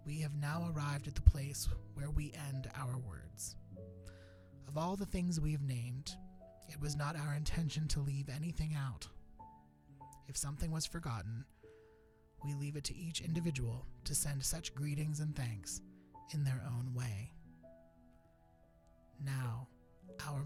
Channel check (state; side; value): identical; both; correlation 1.00